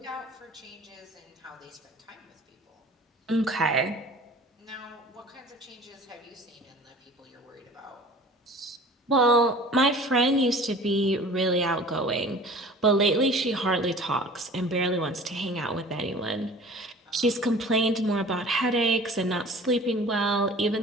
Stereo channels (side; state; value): both; normal; correlation 0.44